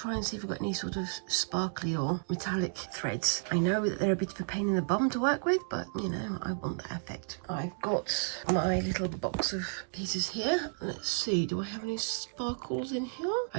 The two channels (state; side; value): silent; left; digital silence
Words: and see if I've got any sort of sparkly or metallic threads. I know that they're a bit of a pain in the bum to work with, but you know, I want that effect. I've got my little box of pieces here. Let's see, do I have any sparkles in here?